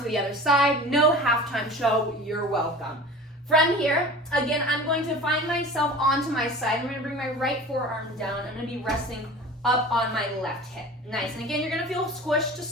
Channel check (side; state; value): both; normal; correlation 0.38